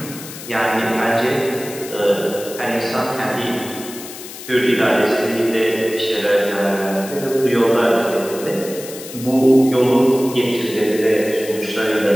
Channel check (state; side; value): noise; left; hiss, 13 dB below the sound